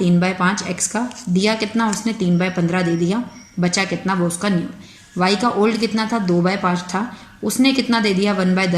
X का, दिया कितना उसने 3/15 दे दिया, बचा कितना वो उसका न्यू। Y का ओल्ड कितना था 2/5 था, उसने कितना दे दिया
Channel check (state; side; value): identical; both; correlation 1.00